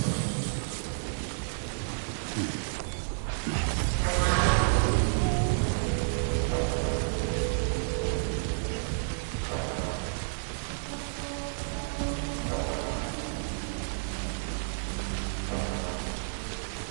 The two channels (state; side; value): silent; left; digital silence